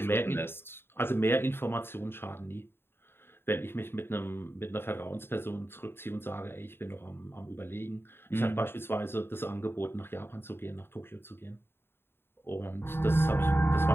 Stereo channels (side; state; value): right; late; 0.11 ms